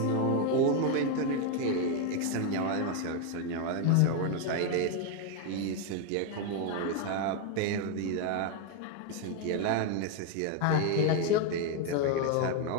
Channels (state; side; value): different; both; correlation 0.01